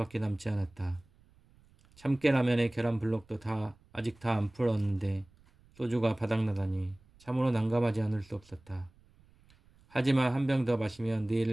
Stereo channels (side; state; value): right; noise; rumble, 29 dB below the sound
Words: 남지 않았다. 참깨라면에 계란 블록도 아직 다 안 풀었는데 소주가 바닥나다니 참으로 난감하지 않을 수 없었다. 하지만 한 병 더 마시면